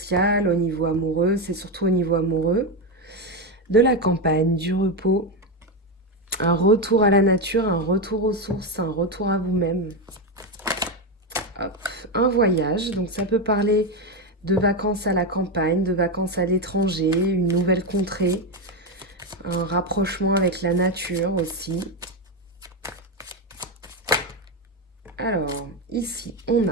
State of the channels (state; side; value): normal; both; correlation 0.10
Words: au niveau amoureux, c'est surtout au niveau amoureux. De la campagne, du repos, un retour à la nature, un retour aux sources, un retour à vous-même. Un voyage, donc ça peut parler de vacances à la campagne, de vacances à l'étranger, une nouvelle contrée, un rapprochement avec la nature aussi. Alors, ici, on